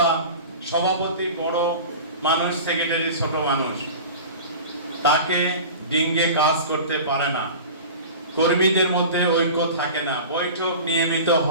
সভাপতি বড় মানুষ, সেক্রেটারি ছোট মানুষ, তাকে ডিঙ্গে কাজ করতে পারে না, কর্মীদের মধ্যে ঐক্য থাকে না, বৈঠক নিয়মিত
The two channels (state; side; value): inverted; both; correlation -0.35